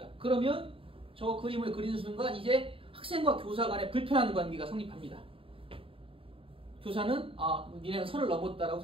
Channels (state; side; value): late; left; 0.26 ms